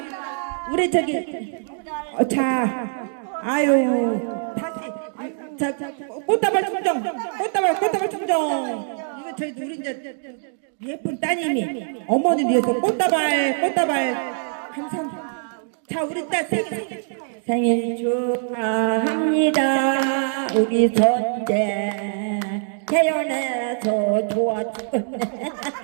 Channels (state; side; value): silent; left; digital silence